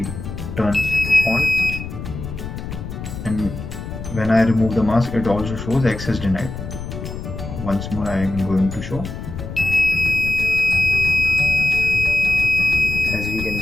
turns on, and when I remove the mask, it also shows access denied. Once more I am going to show. As we can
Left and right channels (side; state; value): left; noise; rumble, 8 dB below the sound